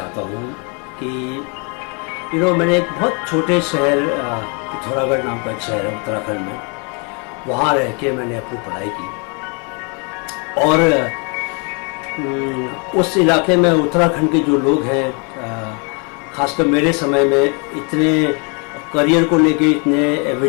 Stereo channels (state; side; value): quieter; right; 34.8 dB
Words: हूँ कि मैंने एक बहुत छोटे शहर पिथौरागढ़ नाम का एक शहर है उत्तराखंड में, वहाँ रह के मैंने अपनी पढ़ाई की। और उस इलाके में उत्तराखंड के जो लोग हैं, ख़ासकर मेरे समय में इतने करियर को लेके इतने